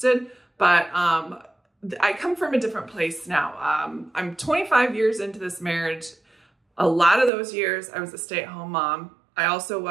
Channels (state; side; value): drops out; left; at 7.3 s